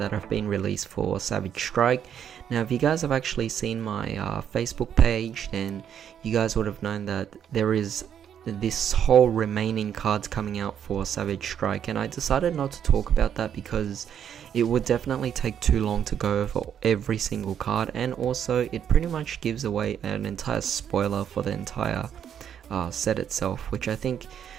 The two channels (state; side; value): quieter; left; 8.9 dB